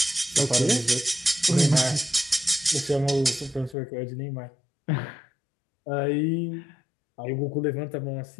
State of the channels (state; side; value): drops out; right; at 3.8 s